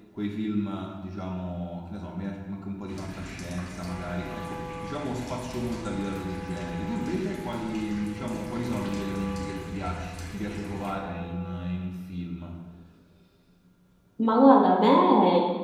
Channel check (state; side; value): identical; both; correlation 1.00